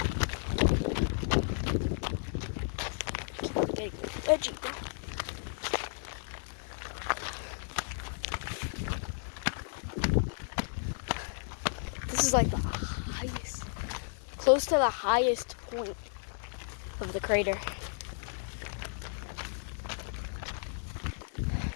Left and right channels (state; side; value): silent; right; digital silence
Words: Edgy, bro. This is like the highest, close to the highest point of the crater.